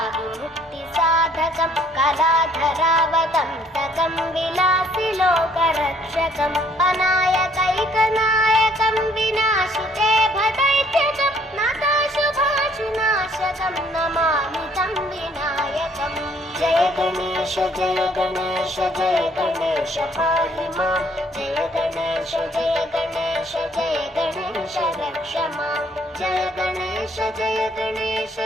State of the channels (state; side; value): normal; both; correlation 0.63